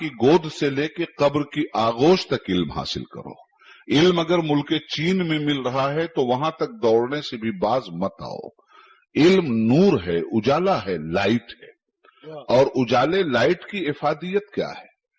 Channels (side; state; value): both; identical; correlation 1.00